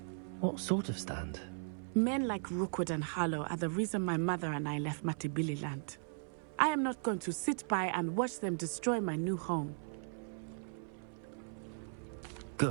What sort of stand? Men like Rookwood and Harlow are the reason my mother and I left Matibili land. I am not going to sit by and watch them destroy my new home.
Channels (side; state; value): left; silent; 53 dB below the other